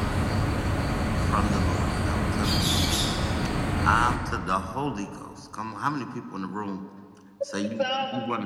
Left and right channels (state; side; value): identical; both; correlation 1.00